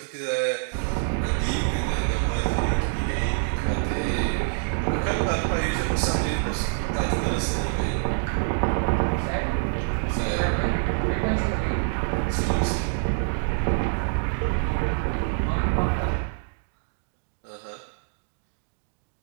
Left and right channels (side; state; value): left; silent; digital silence